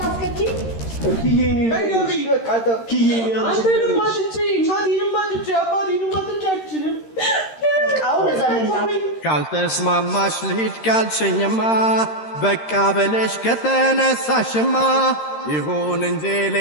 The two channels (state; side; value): late; right; 13 ms